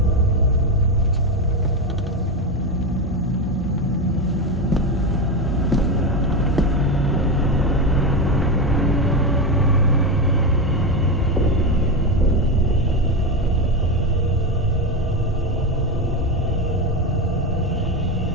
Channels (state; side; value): normal; both; correlation 0.14